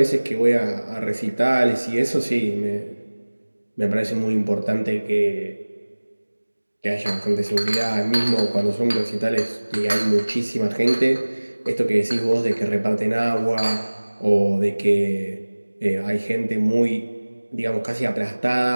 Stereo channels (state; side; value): inverted; both; correlation -1.00